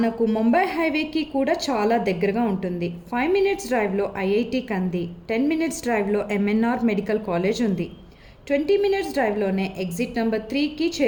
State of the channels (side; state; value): both; identical; correlation 1.00